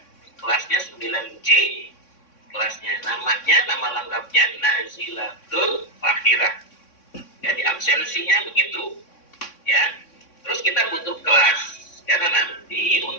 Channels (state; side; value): late; right; 3.6 ms